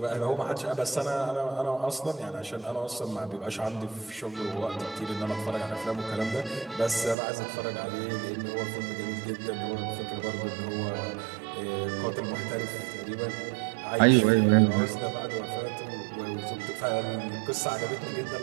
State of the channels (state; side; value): drops out; left; at 7.2 s